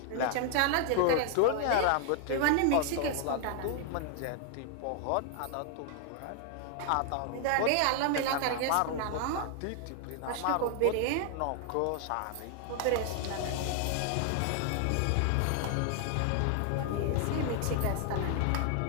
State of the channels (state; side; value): different; both; correlation 0.00